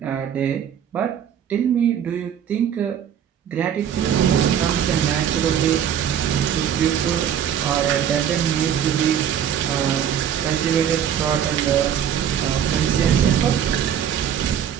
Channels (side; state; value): left; quieter; 9.1 dB